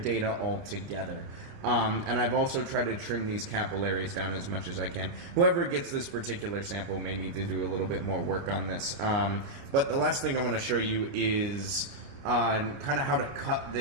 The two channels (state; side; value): late; left; 29 ms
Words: altogether. And I've also tried to trim these capillaries down as much as I can. Whoever gets this particular sample may need to do a little bit more work on this. But the last thing I want to show you is kind of how to cut